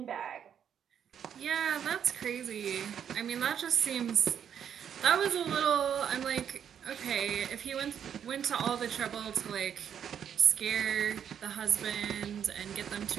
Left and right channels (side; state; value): left; quieter; 8.6 dB